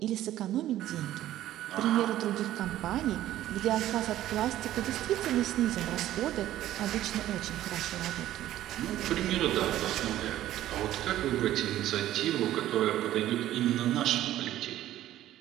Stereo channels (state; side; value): quieter; left; 13.5 dB